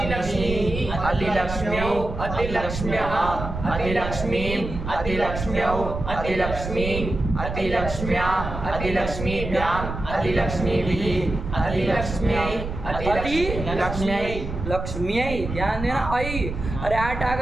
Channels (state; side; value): noise; right; rumble, 6 dB below the sound